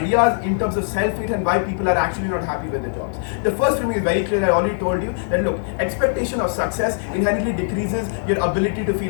in terms of self-hate and why people are actually not happy with their jobs. The first for me is very clear. I already told you that look, expectation of success inherently decreases your ability to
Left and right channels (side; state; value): right; silent; 65 dB below the other